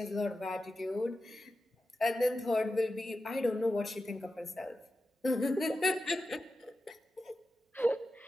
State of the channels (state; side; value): normal; both; correlation 0.91